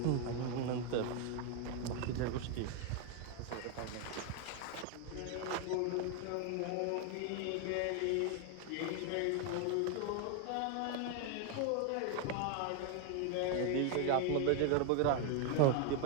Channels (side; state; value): both; different; correlation 0.01